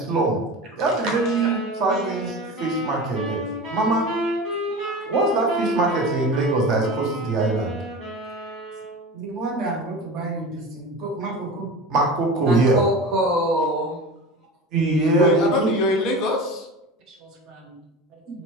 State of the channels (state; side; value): normal; both; correlation 0.31